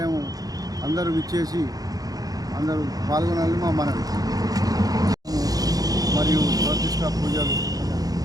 అందరూ విచ్చేసి అందరూ పాల్గొనాలని మా మనవి. మరియు ప్రతిష్ట పూజలు,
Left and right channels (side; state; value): left; late; 0.18 ms